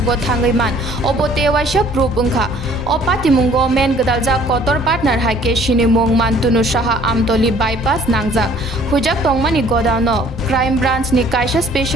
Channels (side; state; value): both; normal; correlation 0.56